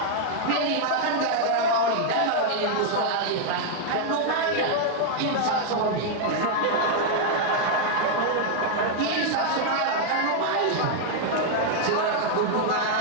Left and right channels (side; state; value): both; different; correlation 0.00